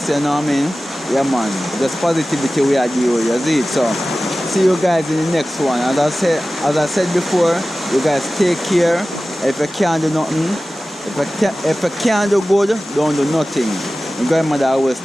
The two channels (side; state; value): both; normal; correlation 0.96